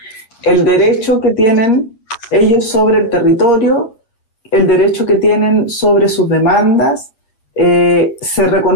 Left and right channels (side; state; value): right; late; 8.7 ms